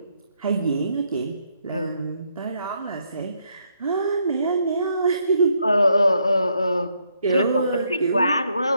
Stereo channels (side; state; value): both; inverted; correlation -0.74